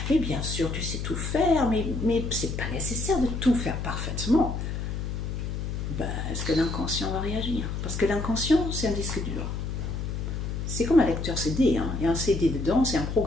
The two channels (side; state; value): left; noise; hum, 4 dB below the sound